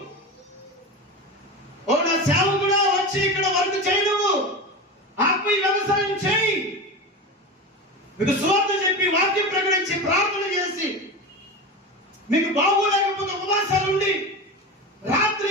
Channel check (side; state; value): both; normal; correlation 0.25